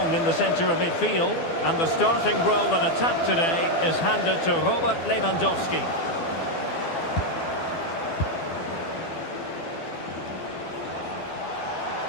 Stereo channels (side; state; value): right; late; 12 ms